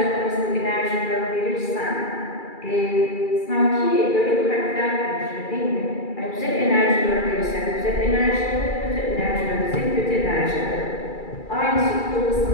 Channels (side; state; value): right; late; 2.3 ms